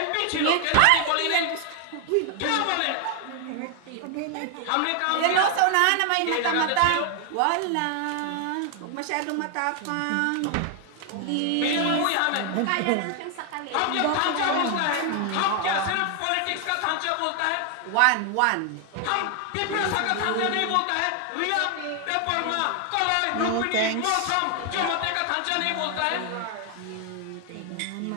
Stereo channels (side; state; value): both; different; correlation 0.00